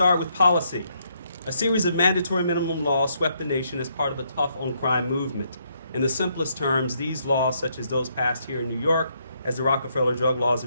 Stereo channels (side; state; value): both; inverted; correlation -0.74